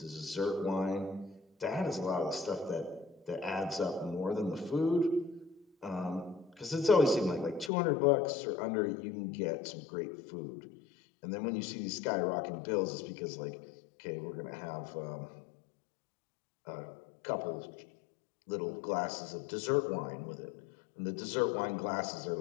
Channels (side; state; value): right; drops out; at 7.7 s